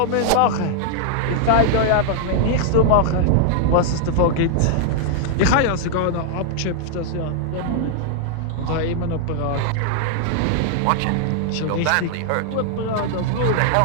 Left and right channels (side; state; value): both; different; correlation -0.01